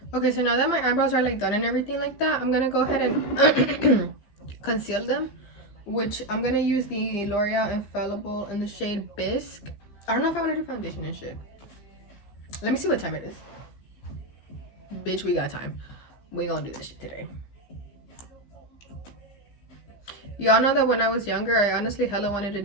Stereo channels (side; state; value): right; late; 15 ms